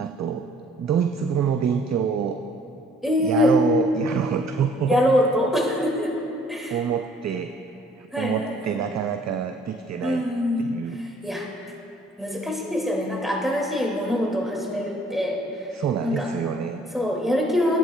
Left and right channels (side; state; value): both; normal; correlation 0.59